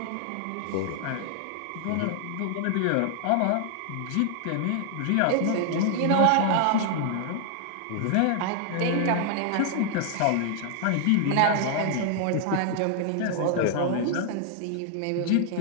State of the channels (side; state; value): both; different; correlation 0.00